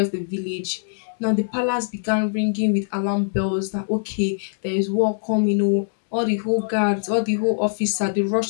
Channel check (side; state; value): right; silent; digital silence